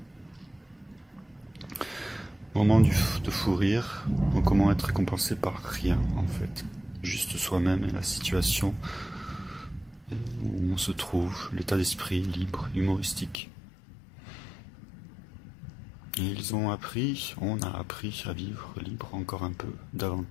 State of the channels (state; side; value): drops out; right; at 13.4 s